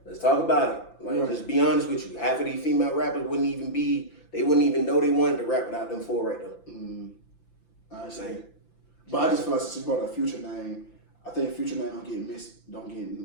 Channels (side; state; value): right; late; 5.9 ms